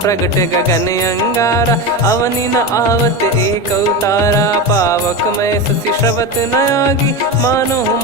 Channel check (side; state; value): both; normal; correlation 0.20